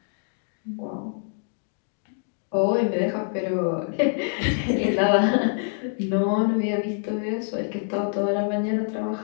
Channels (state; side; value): silent; right; digital silence